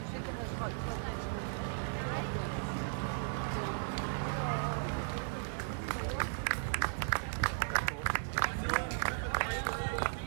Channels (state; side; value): silent; left; digital silence